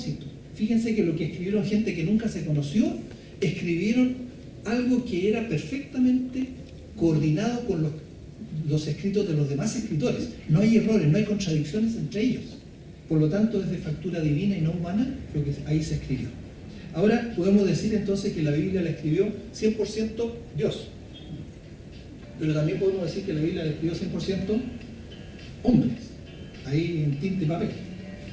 Fíjense que lo que escribieron gente que nunca se conoció, escribieron algo que era perfectamente coordinado con los escritos de los demás escritores. No hay errores, no hay contradicciones entre ellos. Por lo tanto, es de factura divina y no humana lo que ahí se escribió. Ahora podemos decir entonces que la Biblia la escribió 100% Dios. Pero también podemos decir que la Biblia la escribió 100% hombres, ahí en tinta y papel.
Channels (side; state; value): both; identical; correlation 1.00